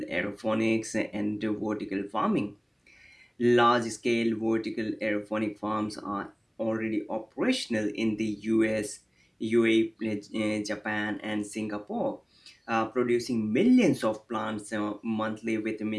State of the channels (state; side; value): identical; both; correlation 1.00